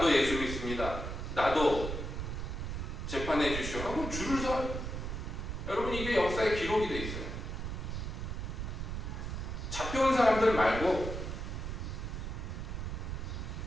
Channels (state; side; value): noise; right; rumble, 4 dB below the sound